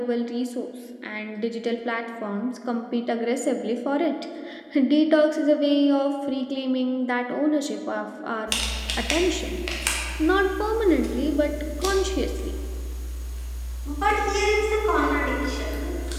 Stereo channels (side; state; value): both; identical; correlation 1.00